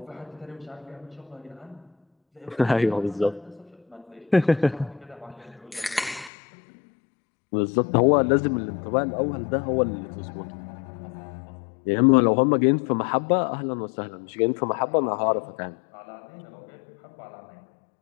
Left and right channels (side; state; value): right; drops out; at 6.3 s